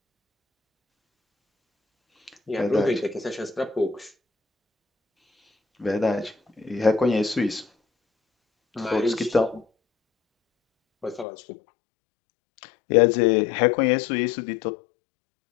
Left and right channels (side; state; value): right; drops out; at 11.2 s